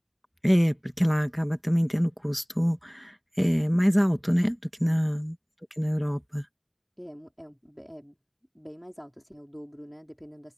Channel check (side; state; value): both; identical; correlation 1.00